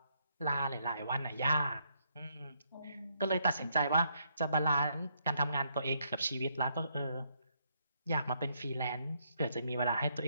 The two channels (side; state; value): both; inverted; correlation -0.74